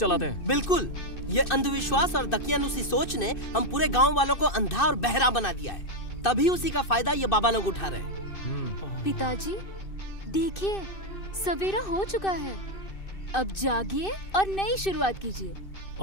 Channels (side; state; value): right; late; 2.6 ms